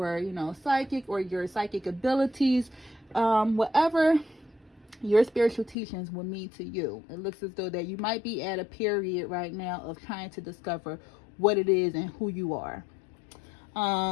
psychic, or your psychic abilities, whatever your spiritual teachings will mean to you. It looks as though that you might be at a period right now of trying to discover what it is and who you are.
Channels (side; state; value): right; drops out; at 5.8 s